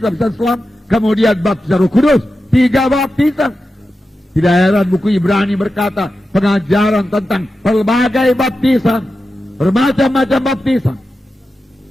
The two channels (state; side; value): normal; both; correlation 0.91